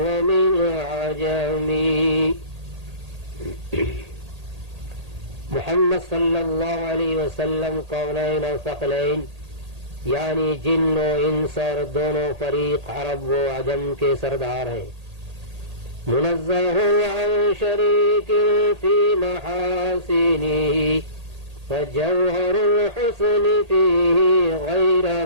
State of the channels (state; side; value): late; left; 1.8 ms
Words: ومن عجم. محمد صلی اللہ علیہ وسلم قونین و ثقلین یعنی جن و انس اور دونوں فریق عرب و عجم کے سردار ہیں. منزہ عن شریک فی محاسنہ فجوہر الحسن فیہ غیر